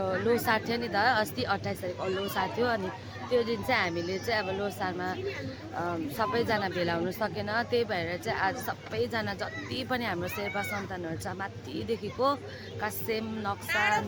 लोसार थियो नि त अस्ति 28 तारिक लोसार थियो। अनि त्यो दिन चाहिँ हामीले चाहिँ अब लोसारमा सबैजना भेला हुनु सकेन। त्यही भएर चाहिँ आज सबैजना जति पनि हाम्रो शेर्पा सन्तानहरू छ माथिदेखिको कासेम नक्सान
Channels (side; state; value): both; identical; correlation 1.00